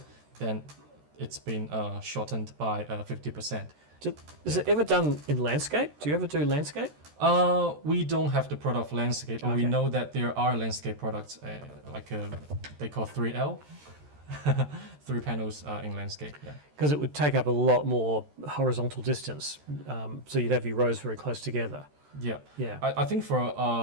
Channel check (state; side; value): late; left; 13 ms